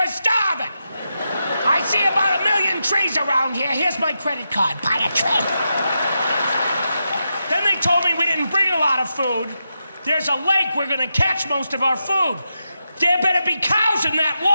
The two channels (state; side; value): inverted; both; correlation -0.87